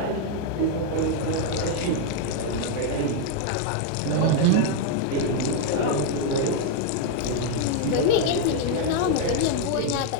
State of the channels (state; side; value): different; both; correlation 0.00